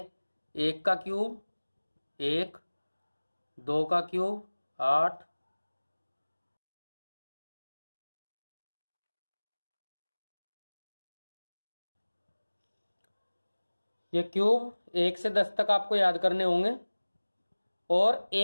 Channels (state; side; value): inverted; both; correlation -1.00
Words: 1 का क्यूब 1, 2 का क्यूब 8, ये क्यूब 1 से 10 तक आपको याद करने होंगे। और